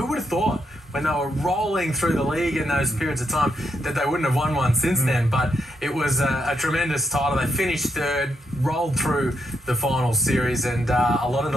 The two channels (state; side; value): normal; both; correlation 0.80